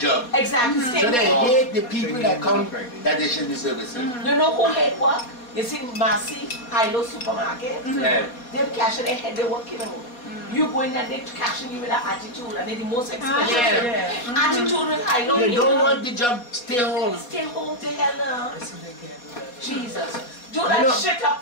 Exactly. So they hate the people that come that they should be servicing. You know who hate work? You see Massey, Hilo supermarket? Yeah. Them cash their head, they work it out. You go in there, they cashing you with an attitude, and they're the most expensive. Attitude with Hilo. They don't want the job, stay home. Stay home to hell now. Jesus. Do that shit up.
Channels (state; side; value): late; right; 4.2 ms